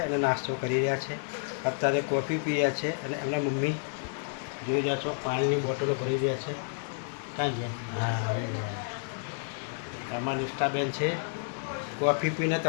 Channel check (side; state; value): right; silent; 58 dB below the other